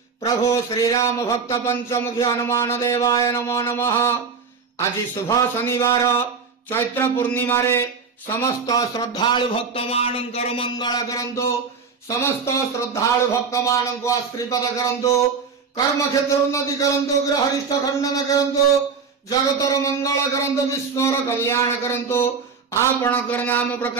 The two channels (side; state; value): left; quieter; 5.5 dB